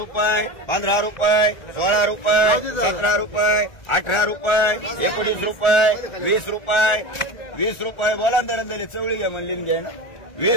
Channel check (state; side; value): late; right; 1.4 ms